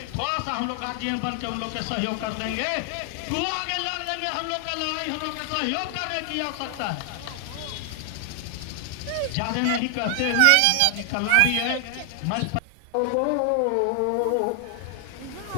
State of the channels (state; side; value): different; both; correlation 0.00